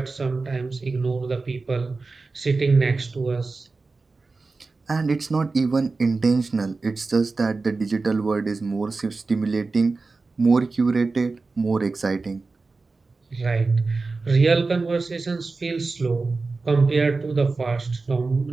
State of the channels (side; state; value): left; quieter; 3.9 dB